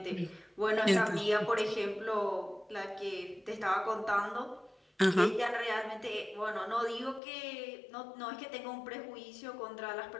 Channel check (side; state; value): right; drops out; at 7.2 s